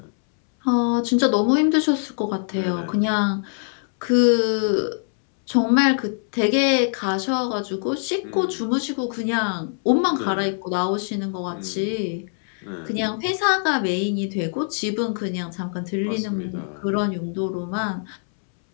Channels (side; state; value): right; silent; 63 dB below the other